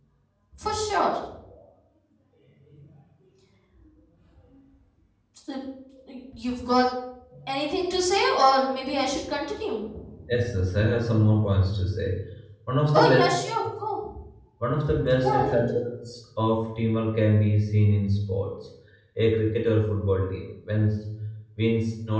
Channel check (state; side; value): identical; both; correlation 1.00